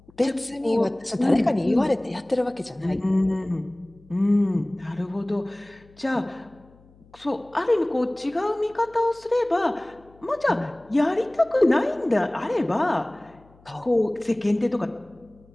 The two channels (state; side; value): noise; left; hum, 28 dB below the sound